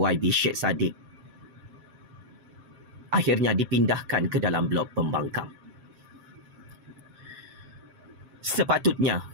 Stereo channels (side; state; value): left; late; 7.5 ms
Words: Sheikh Sadiq akhirnya dipindahkan ke dalam blok pembangkang. Sepatutnya,